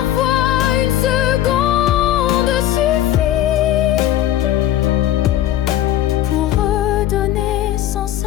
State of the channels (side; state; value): right; quieter; 12.5 dB